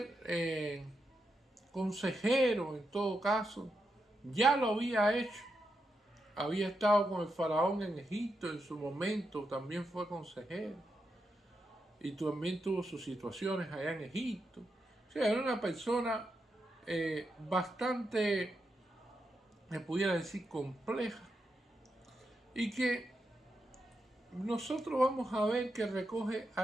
consejero en todo caso. Ya lo había hecho. Había estado con el faraón en Egipto en su momento, también fue consejero. Y también tuvo sus situaciones allá en Egipto. O sea, era una persona bastante, me pudiera decir, compleja. Y que nosotros vamos a ver que recoge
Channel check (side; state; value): both; normal; correlation 0.85